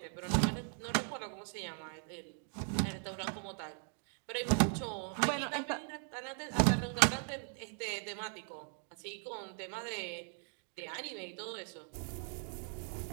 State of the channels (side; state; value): left; silent; 52 dB below the other